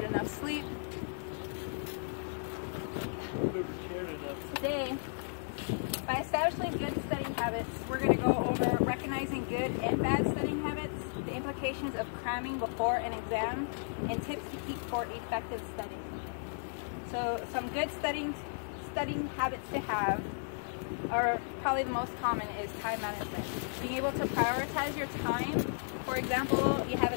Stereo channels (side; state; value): right; silent; digital silence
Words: enough sleep. Today, by establishing good studying habits, we're going to go over recognizing good and bad studying habits, the implications of cramming before an exam, and tips to keep for effective studying. So some good studying habits to have are probably the most common is time management. Being able to prioritize your time. For example, you have